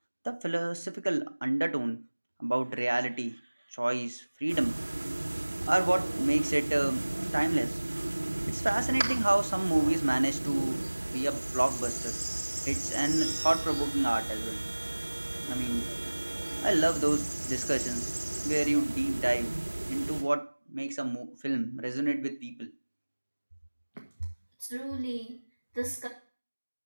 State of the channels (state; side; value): inverted; both; correlation -1.00